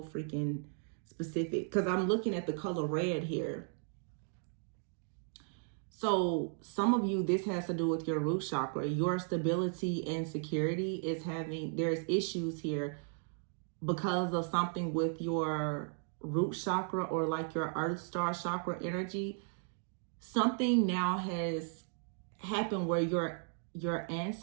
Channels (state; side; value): silent; left; 54 dB below the other